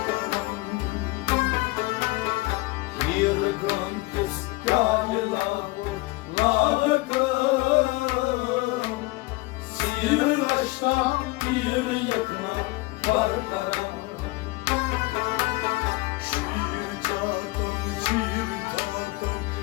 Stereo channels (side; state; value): right; quieter; 22.5 dB